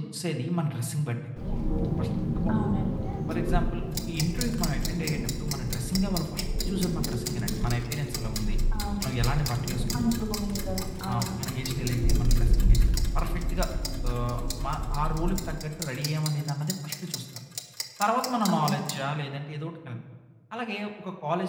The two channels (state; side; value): identical; both; correlation 1.00